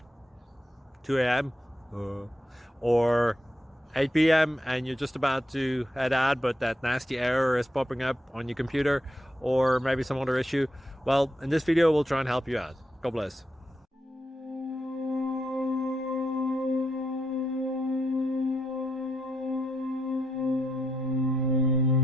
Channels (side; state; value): both; normal; correlation 0.82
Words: 2 a.m. Or 8 p.m. and you're just about to head out, but that nasty error is popping up on your computer, or maybe some other issue. Well, in this video we'll try and help you out. God bless.